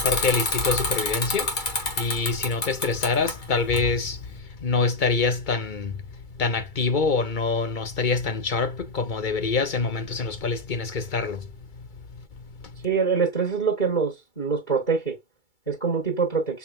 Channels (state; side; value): late; right; 2.3 ms